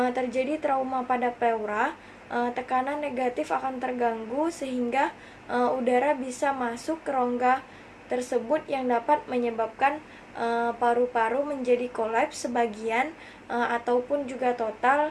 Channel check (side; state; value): both; identical; correlation 1.00